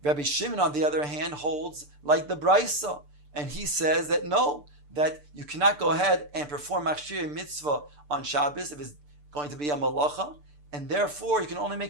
Rabbi Shimon, on the other hand, holds like the brisa, and he says that no, that you cannot go ahead and perform machshirei mitzvah on Shabbos if it's going to be a malacha, and therefore you can only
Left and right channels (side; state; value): left; late; 6.8 ms